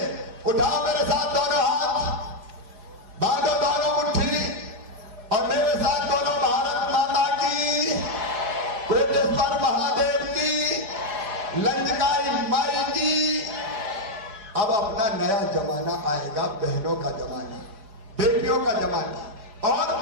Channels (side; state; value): left; late; 5.0 ms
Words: उठाओ मेरे साथ दोनों हाथ, बांधो दोनों मुट्ठी, और मेरे साथ दोनों भारत माता की, कोटेश्वर महादेव की, लंजकाई माई की। अब अपना नया जमाना आएगा, बहनों का जमाना, बेटियों का जमाना। और